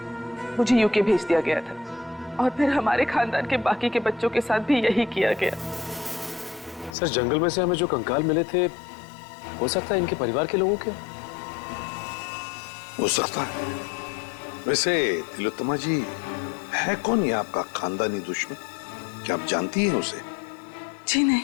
मुझे यूके भेज दिया गया था, और फिर हमारे खानदान के बाकी के बच्चों के साथ भी यही किया गया। सर, जंगल में से हमें जो कंकाल मिले थे, हो सकता है इनके परिवार के लोगों के। हो सकता है। वैसे तिलोत्तमा जी, है कौन ये आपका खानदानी दुश्मन? क्या आप जानती हैं उसे? जी नहीं।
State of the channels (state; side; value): drops out; right; at 7.0 s